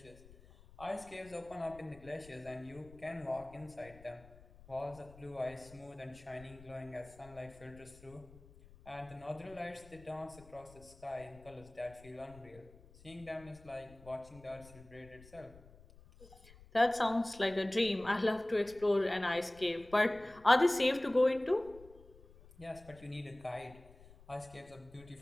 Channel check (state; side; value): noise; left; rumble, 22 dB below the sound